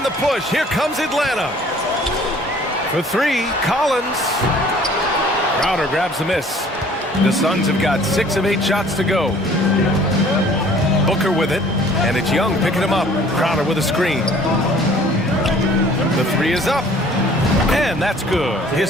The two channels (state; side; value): normal; both; correlation 0.53